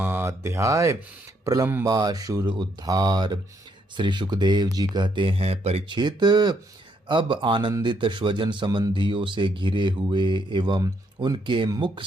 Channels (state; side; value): normal; both; correlation 0.73